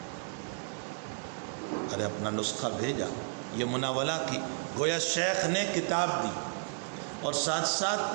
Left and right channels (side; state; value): left; silent; 56 dB below the other